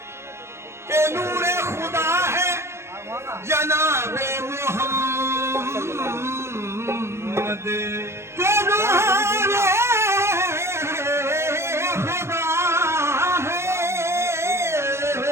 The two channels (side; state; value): left; late; 0.13 ms